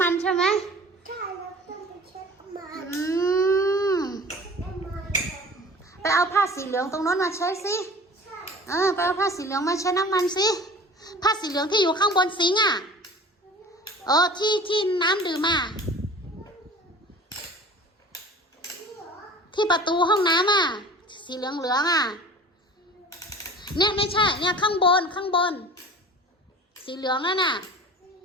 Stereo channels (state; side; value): normal; both; correlation 0.42